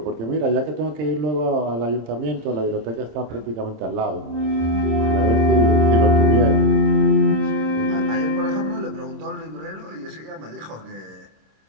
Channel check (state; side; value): late; left; 26 ms